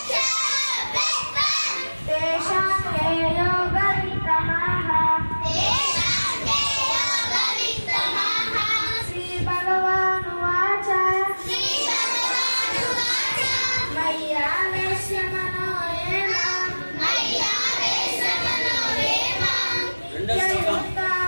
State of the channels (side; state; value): both; inverted; correlation -1.00